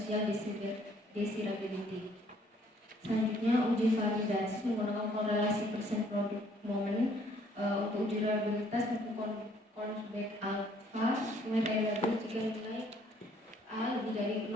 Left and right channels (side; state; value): both; normal; correlation 0.63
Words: desirability. Selanjutnya, uji validasi menggunakan korelasi persen product moment. Untuk uji reliabilitas menggunakan Consback alpha dengan variabel jika nilai A lebih dari